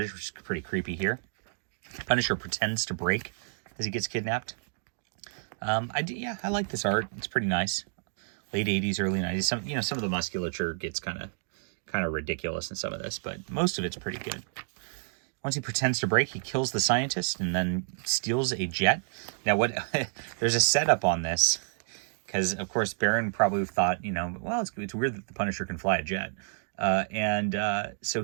which is pretty creepy here. Punisher pretends to break as he gets kidnapped. I like this art. It's pretty nice. Late 80s, early 90s. Some of the musculature gets kind of ridiculous in some of this, but most of it's pretty good. Once he pretends to break, he kills the scientist and then steals a jet. Now, there's a setup on this because, of course, Baron probably thought, it's weird that the Punisher can fly a jet. So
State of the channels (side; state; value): left; silent; digital silence